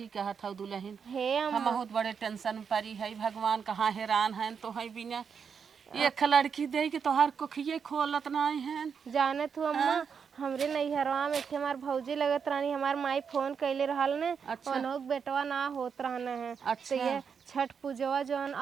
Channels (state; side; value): quieter; left; 6.5 dB